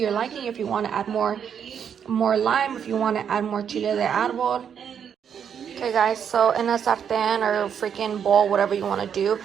liking. If you want to add more lime, if you want to add more chile de árbol. Okay guys, so in a sartén or freaking bowl, whatever you want to do,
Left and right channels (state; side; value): quieter; left; 8.0 dB